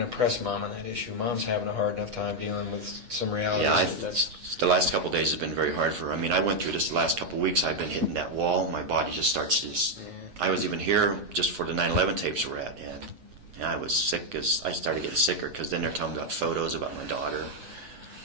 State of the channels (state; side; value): late; left; 8.3 ms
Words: to press Mom on that issue. Mom's having a hard enough time dealing with some realities. Yeah, the last couple of days have been very hard for her. I mean, I went through this the last couple of weeks. I've been hitting that wall. My body just starts to just... I was even here just for the 9/11 tapes we're at, and I was sick as I started getting sicker because then they're telling me about photos about my daughter,